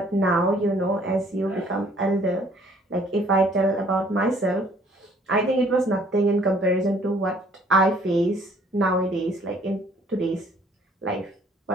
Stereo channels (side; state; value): both; normal; correlation 0.60